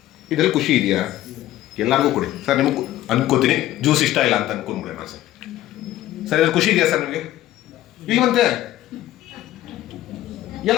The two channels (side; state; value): right; quieter; 14.2 dB